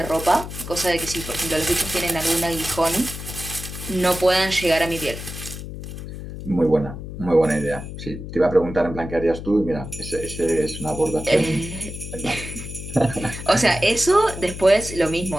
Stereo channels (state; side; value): noise; left; hum, 9 dB below the sound